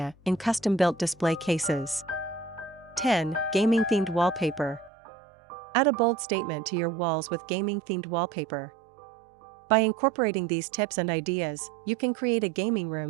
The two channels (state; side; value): drops out; left; at 4.9 s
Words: in custom-built display cases. 10. Gaming-themed wallpaper. Add a bold statement to your walls with gaming-themed wallpaper. By incorporating these tips and ideas, you can create a gaming